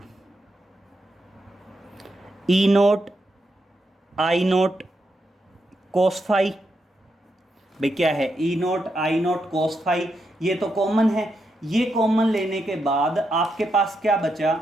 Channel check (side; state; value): both; normal; correlation 0.83